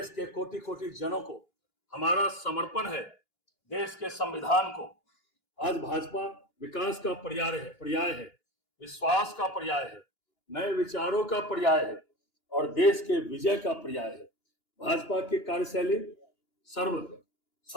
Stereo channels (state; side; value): late; right; 2.9 ms